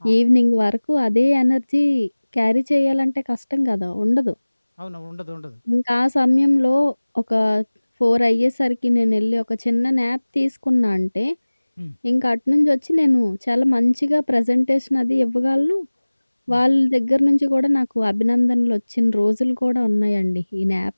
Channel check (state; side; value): inverted; both; correlation -1.00